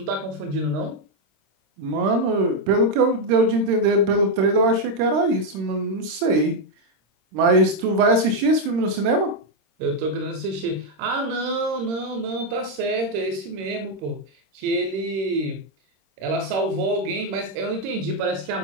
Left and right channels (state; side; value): late; left; 26 ms